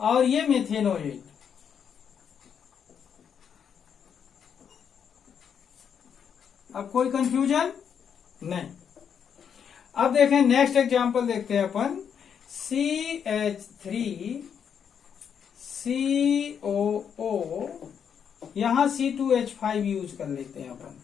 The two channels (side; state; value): right; quieter; 7.7 dB